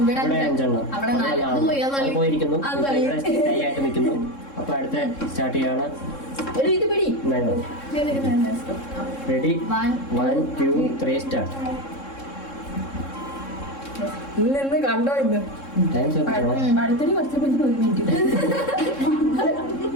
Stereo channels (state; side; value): late; right; 3.7 ms